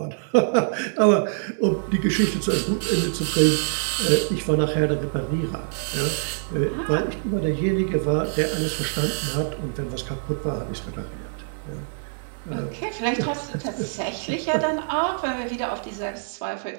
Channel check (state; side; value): silent; left; digital silence